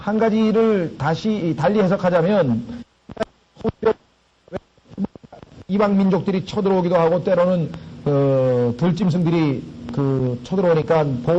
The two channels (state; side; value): identical; both; correlation 1.00